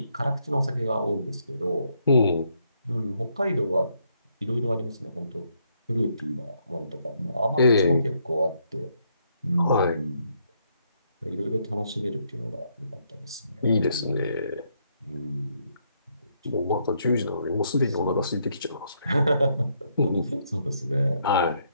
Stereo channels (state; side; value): inverted; both; correlation -0.74